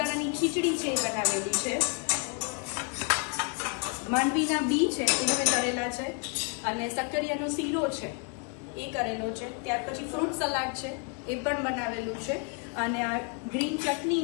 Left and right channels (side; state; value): right; quieter; 38.5 dB